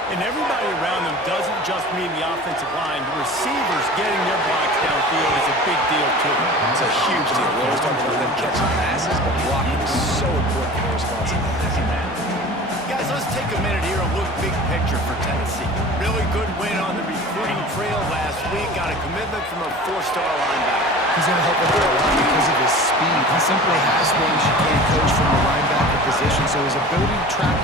And everybody around them doesn't just mean the offensive line. The receivers getting their blocks downfield is a big deal, too. It's a huge deal. We always talk about them catching passes, but blocking is so important for their responsibility. Guys, let's take a minute here and look big picture for Tennessee. Really good win on the recruiting trail last week. Got a commitment from a four-star linebacker. He's going to help them out a lot because of his speed. He simply has things you can't coach from the linebacker position. So his ability to track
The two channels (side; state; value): both; normal; correlation 0.39